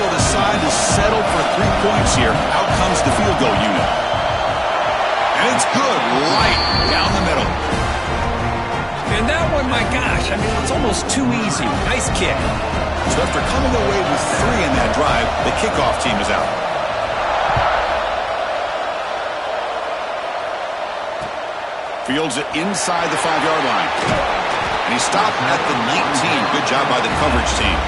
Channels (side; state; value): both; identical; correlation 1.00